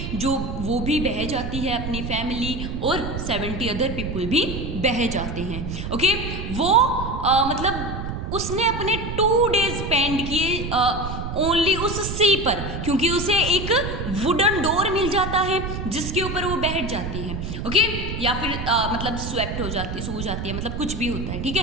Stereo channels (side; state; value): right; noise; rumble, 5 dB below the sound